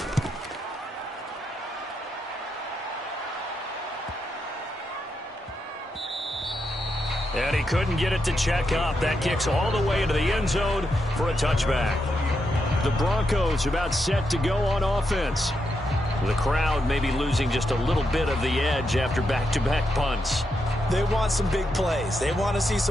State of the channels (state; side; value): normal; both; correlation 0.83